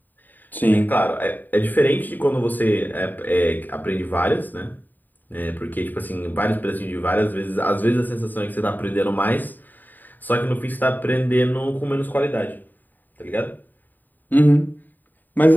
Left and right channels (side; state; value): right; late; 0.088 ms